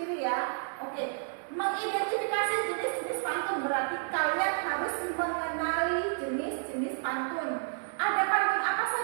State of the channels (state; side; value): silent; left; 57 dB below the other